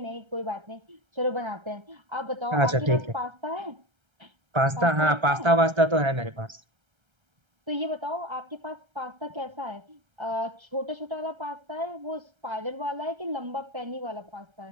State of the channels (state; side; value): late; left; 1.3 ms